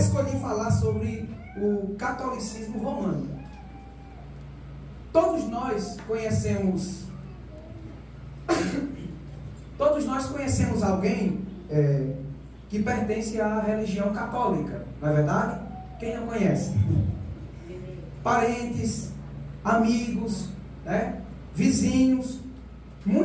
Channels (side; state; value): both; identical; correlation 1.00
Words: falar sobre o catolicismo romano. Todos nós conhecemos alguém que pertence à religião católica, não é verdade? Quem não conhece? Parentes, amigos, vizinhos.